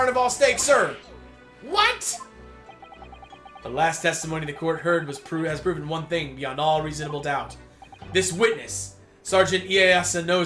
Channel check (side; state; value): both; identical; correlation 1.00